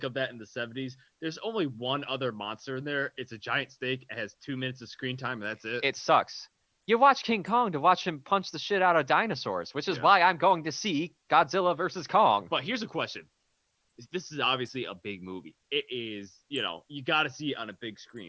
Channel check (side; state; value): both; identical; correlation 1.00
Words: of that in the 70s, there's only one other monster in there. It's a giant snake. It has 2 minutes of screen time, and that's it. It sucks. You watch King Kong to watch him punch the shit out of dinosaurs, which is why I'm going to see Godzilla versus Kong. But here's a question. This is obviously a big movie. It is, you got to see it on a big